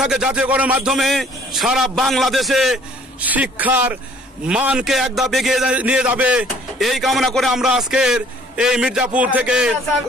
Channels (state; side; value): normal; both; correlation 0.57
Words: জাতীয়করণের মাধ্যমে সারা বাংলাদেশে শিক্ষার মানকে এক ধাপ এগিয়ে নিয়ে যাবে, এই কামনা করে আমরা আজকের এই মির্জাপুর থেকে